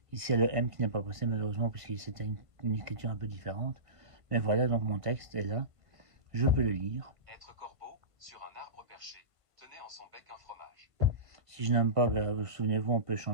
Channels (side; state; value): left; late; 1.5 ms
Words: Ici, il y a le M qui n'est pas passé malheureusement puisque c'était une écriture un peu différente. Mais voilà, donc mon texte est là. Je peux le lire. Être corbeau, sur un arbre perché, tenait en son bec un fromage. Si je n'aime pas, souvenez-vous, on peut